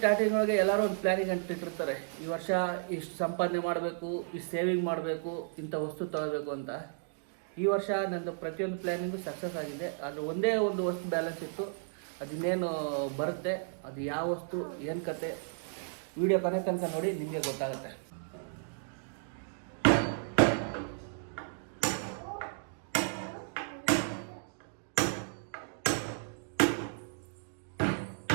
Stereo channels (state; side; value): silent; left; digital silence